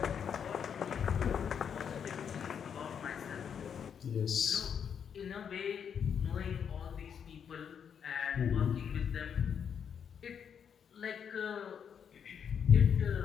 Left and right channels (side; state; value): right; quieter; 7.6 dB